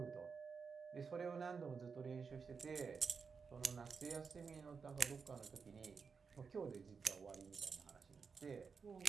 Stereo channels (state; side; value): quieter; left; 5.5 dB